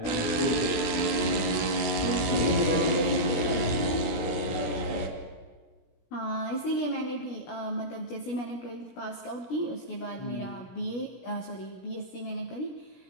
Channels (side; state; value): right; late; 16 ms